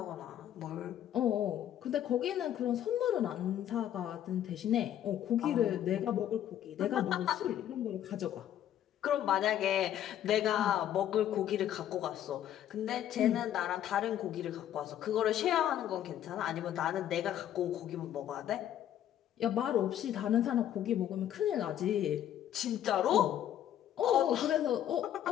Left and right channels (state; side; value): quieter; right; 11.1 dB